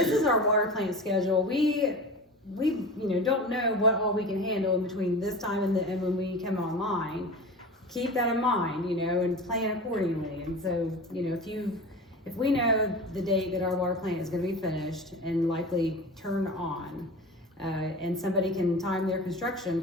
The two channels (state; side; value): normal; both; correlation 0.33